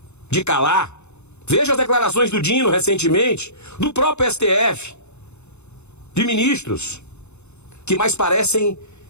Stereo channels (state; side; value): late; right; 0.81 ms